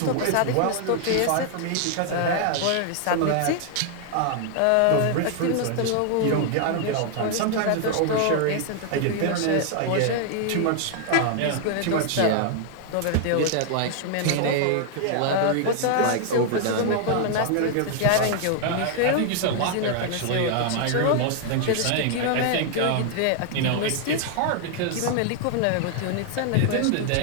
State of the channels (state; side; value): different; both; correlation 0.00